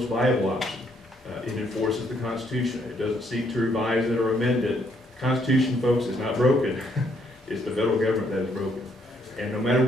viable option. It enforces the Constitution. It doesn't seek to revise it or amend it. The Constitution, folks, is not broken. It's the federal government that is broken. And no matter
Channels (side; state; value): both; normal; correlation 0.70